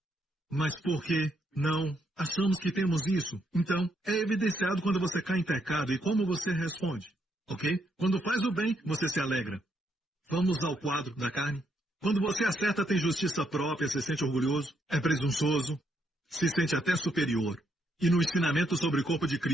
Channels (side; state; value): both; normal; correlation 0.75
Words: Mas por que não achamos que temos isso? Então, é evidenciado quando você cai em pecado e como você responde, ok? Quando faz o bem, você se alegra. Vamos ao quadro da carne. Quando você acerta, tem justiça própria, se sente orgulhoso, é presunçoso, se sente até superior. E no ensinamento sobre o corpo de